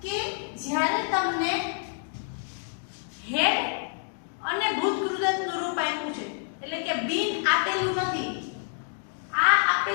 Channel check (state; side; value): silent; right; digital silence